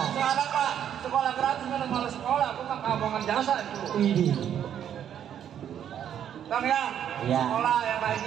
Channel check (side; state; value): left; quieter; 9.6 dB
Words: Sekarang Pak, sekolah gratis mana malah sekolah, aku mah kabongan jasa itu. Ini. Bang ya, Iya. sekolah yang